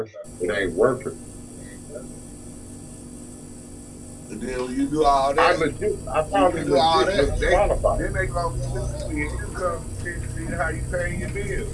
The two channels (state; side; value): identical; both; correlation 1.00